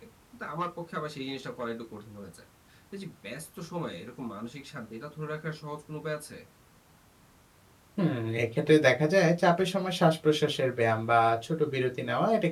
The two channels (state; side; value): identical; both; correlation 1.00